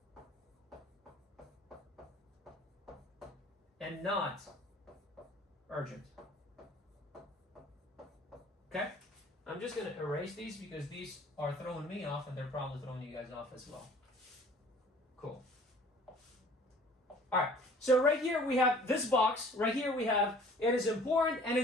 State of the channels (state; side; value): normal; both; correlation 0.51